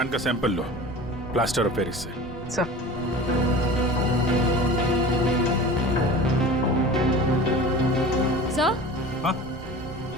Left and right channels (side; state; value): right; noise; rumble, 15 dB below the sound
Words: का सैंपल लो प्लास्टर ऑफ पेरिस से। Sir sir?